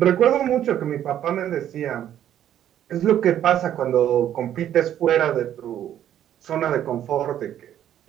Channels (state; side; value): quieter; left; 10.9 dB